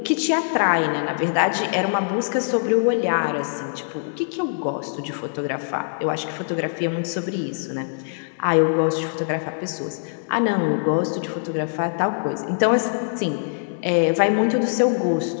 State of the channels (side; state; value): right; silent; digital silence